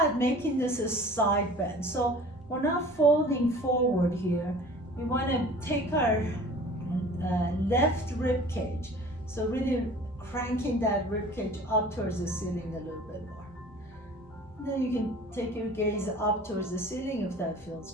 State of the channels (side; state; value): both; normal; correlation 0.45